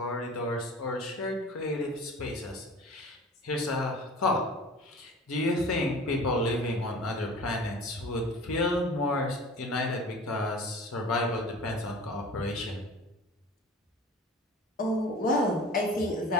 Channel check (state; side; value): normal; both; correlation 0.41